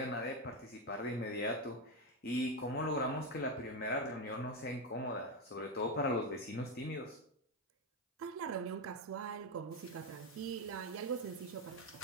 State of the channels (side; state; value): both; normal; correlation 0.09